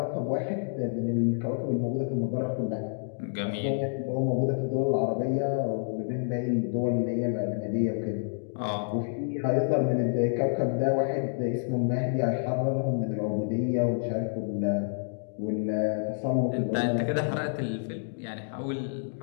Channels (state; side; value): silent; right; digital silence